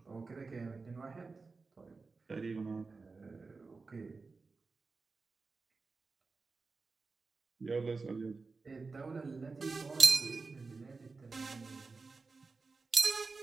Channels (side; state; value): left; quieter; 4.2 dB